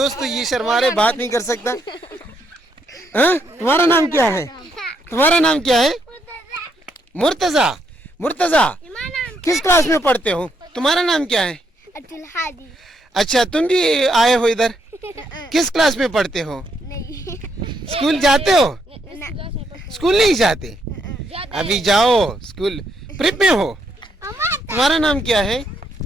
ये शर्मा रहे, बात नहीं कर सकता। हाँ, तुम्हारा नाम क्या है? तुम्हारा नाम क्या है? मुर्तज़ा। मुर्तज़ा, किस क्लास में पढ़ते हो? तुम्हारा नाम क्या है? अब्दुल हादी। अच्छा, तुम भी आए हो इधर? किस क्लास में पढ़ते हो? नहीं। स्कूल जाते हो? स्कूल नहीं जाते? अभी जाओ स्कूल। प्रिप में हो? तुम्हारा नाम क्या है?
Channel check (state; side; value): normal; both; correlation 0.75